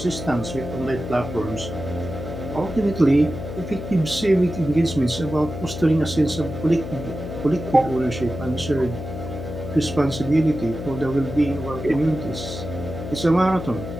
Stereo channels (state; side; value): noise; left; hum, 8 dB below the sound